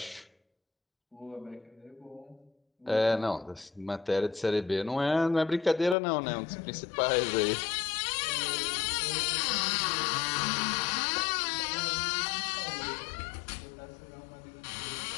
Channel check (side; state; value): right; drops out; at 6.0 s